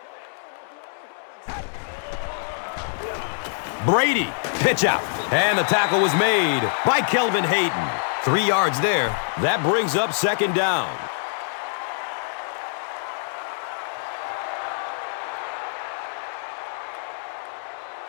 Brady, pitch out. And the tackle was made by Kelvin Hayden. 3 yards there. That brings up second down.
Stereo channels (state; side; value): silent; right; digital silence